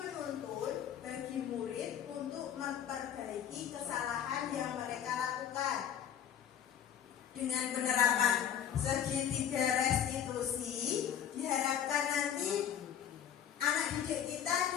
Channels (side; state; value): right; quieter; 9.5 dB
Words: bagi murid untuk memperbaiki kesalahan yang mereka lakukan. Dengan penerapan segitiga restitusi, diharapkan nanti anak didik kita